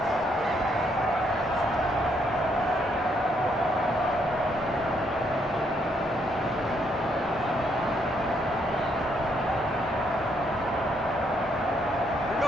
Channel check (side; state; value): both; normal; correlation 0.72